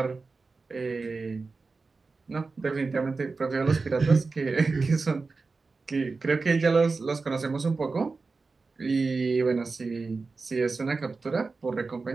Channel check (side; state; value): left; quieter; 4.1 dB